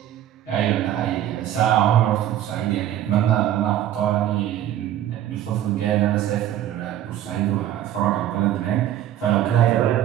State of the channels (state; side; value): quieter; left; 12.0 dB